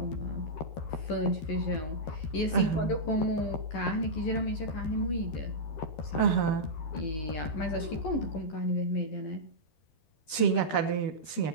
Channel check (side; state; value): right; late; 13 ms